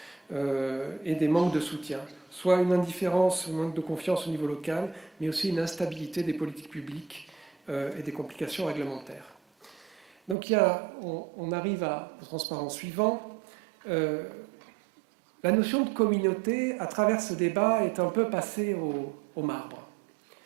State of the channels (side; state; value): left; drops out; at 10.4 s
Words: et des manques de soutien. Soit une indifférence, un manque de confiance au niveau local, mais aussi une instabilité des politiques publiques et des complications réglementaires. Donc on arrive au transparent suivant. La notion de communauté, à travers ce débat, est un peu passée au marbre.